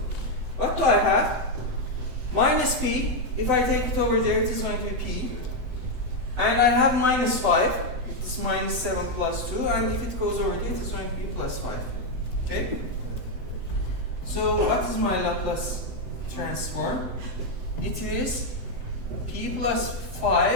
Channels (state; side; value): late; left; 7.9 ms